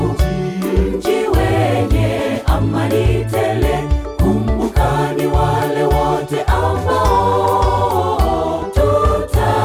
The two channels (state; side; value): identical; both; correlation 1.00